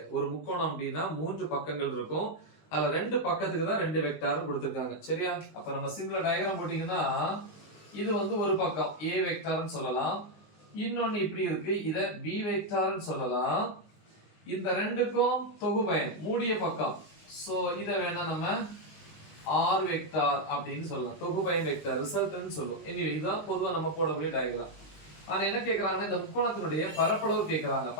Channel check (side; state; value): right; late; 19 ms